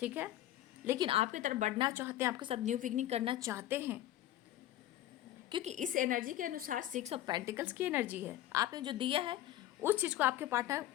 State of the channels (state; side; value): quieter; right; 13.8 dB